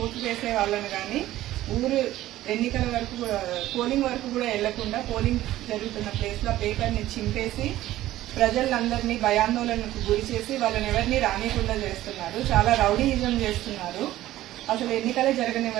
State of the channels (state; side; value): quieter; left; 14.8 dB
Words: ఓటు వేసే వాళ్ళను కానీ ఊరు ఎన్నికల వరకు పోలింగ్ వరకు కూడా వెళ్లకుండా పోలింగ్ జరుగుతున్న ప్లేస్ లో పేపర్ని చింపేసి ప్రజలందరినీ భయాందోళనకు గురి చేసి వాళ్ళని ఎవరిని రానికుండా చేస్తున్నారు. చాలా రౌడీయిజం చేస్తున్నారు. అసలు ఎన్నికలే